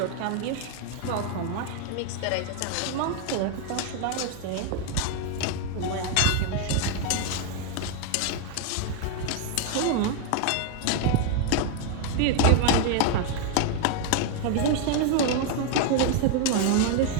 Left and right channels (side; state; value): both; different; correlation 0.01